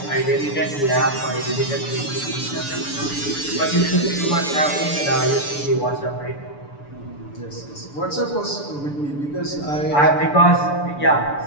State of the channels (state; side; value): late; right; 6.9 ms